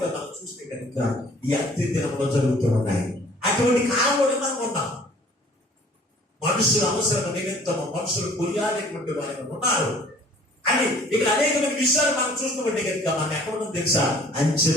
మనం చూస్తే కనుక ఈ అంత్య దినంలో జరుగుతూ ఉన్నాయి. అటువంటి కాలంలోనే మనం ఉన్నాం. మనుషుల అవసరం నిమిత్తము మనుషులు కొనియాడేటువంటి వారు ఉన్నారు అని ఇక్కడ అనేకమైన విషయాలు మనం చూస్తుంటే కనుక మనం ఎక్కడ తెలుసా? అంత్య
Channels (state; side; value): normal; both; correlation 0.53